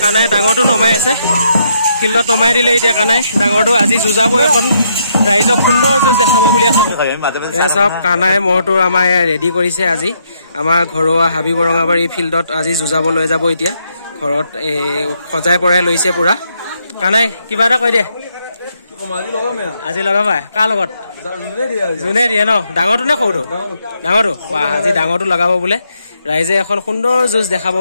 কানাই ডাঙৰটো নমাই আছে ফিল্ডত নমাই দিলে এতিয়া কানাই ডাঙৰটো আজি যুঁজাব এখন ৰাইজক সুন্দৰ যুঁজ দেখাব বুলি আশা কৰিছোঁ। এয়া চাওক কানাই মহটো আমাৰ ৰেডি কৰিছে আজি আমাৰ ঘৰুৱা হাবি বৰঙাবাৰী ফিল্ডত আজি যুঁজাব লৈ যাব এতিয়া ঘৰত সজাই পৰাই লৈছে পুৰা। কানাই কিবা এটা কৈ দে আজি লগাবা কাৰ লগত যোনে দিয়ে ন ডাঙৰটো নে সৰুটো ডাঙৰটো আজি ডাঙৰটো লগাব বোলে ৰাইজে এখন সুন্দৰ যুঁজ দেখাব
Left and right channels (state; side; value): inverted; both; correlation -0.76